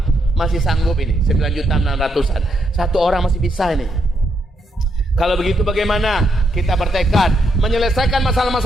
masih sanggup ini 9.600.000-an. Satu orang masih bisa ini. Kalau begitu bagaimana kita bertekad menyelesaikan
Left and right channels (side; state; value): both; normal; correlation 0.78